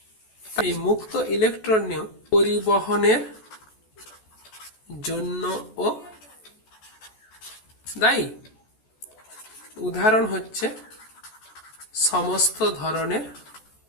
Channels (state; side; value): late; right; 14 ms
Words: এই মুক্ত ইলেকট্রনীয় পরিবহনের জন্য ও দায়ী। উদাহরণ হচ্ছে সমস্ত ধরনের